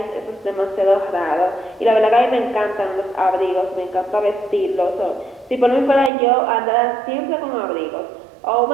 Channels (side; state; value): left; drops out; at 6.1 s